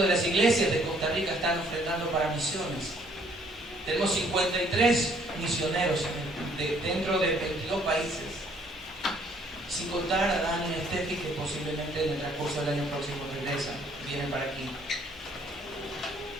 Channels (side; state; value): both; normal; correlation 0.63